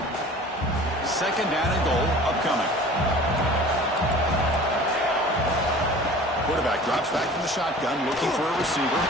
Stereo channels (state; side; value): normal; both; correlation 0.43